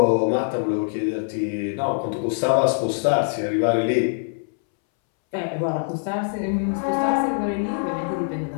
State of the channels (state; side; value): silent; right; 63 dB below the other